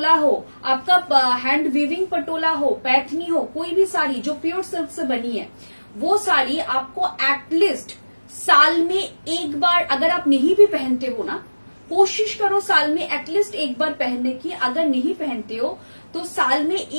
हो, आपका हैंड वीविंग पटोला हो, पैथनी हो, कोई भी साड़ी जो प्योर सिल्क से बनी है, वो साड़ी आपको एटलीस्ट साल में एक बार, अगर आप नहीं भी पहनते हो ना, कोशिश करो साल में एटलीस्ट एक बार पहनने की। अगर नहीं पहनते हो तो साल में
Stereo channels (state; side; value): inverted; both; correlation -1.00